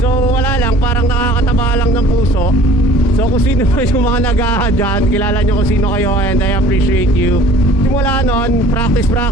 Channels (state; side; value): normal; both; correlation 0.50